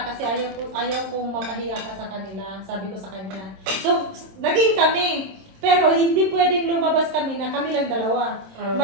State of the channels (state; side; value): late; left; 26 ms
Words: kasi ayaw kong mapahiya ka sa kanila. Sabi ko sa kanya. So, naging kami. Pero hindi pwedeng lumabas kami na kami lang dalawa.